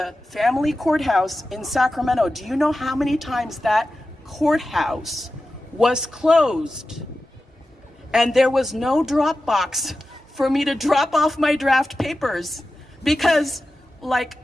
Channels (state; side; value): normal; both; correlation 0.93